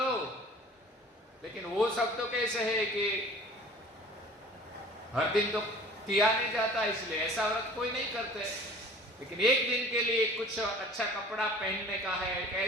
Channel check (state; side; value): normal; both; correlation 0.46